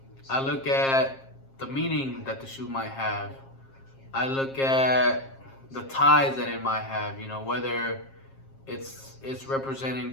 look at the meaning that the shoe might have. I look at the ties that it might have, whether it's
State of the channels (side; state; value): right; late; 7.5 ms